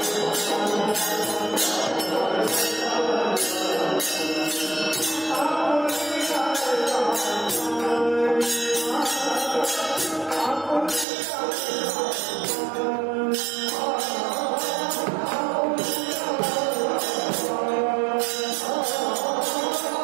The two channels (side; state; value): left; drops out; at 11.1 s